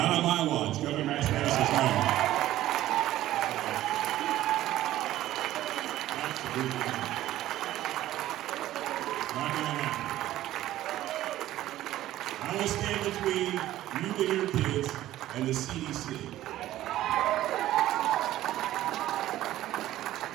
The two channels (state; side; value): quieter; left; 14.3 dB